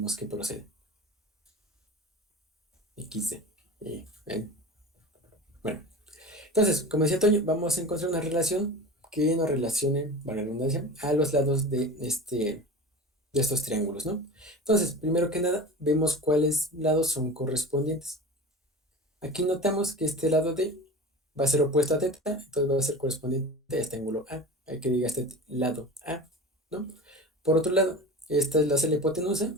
qué procede. XD. ¿Ven? Bueno, entonces, como decía Toño, vamos a encontrar una relación que nos relacione, para la redundancia, a los lados de estos triángulos, ¿no? Entonces, primero que nada, vemos cuáles lados son correspondientes. Aquí notamos que este lado D va a ser opuesto a teta, entonces va a ser correspondiente a este ángulo A. Hay que diga este lado A, ¿no? Por otro lado, esta es la hipotenusa,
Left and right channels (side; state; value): both; normal; correlation 0.33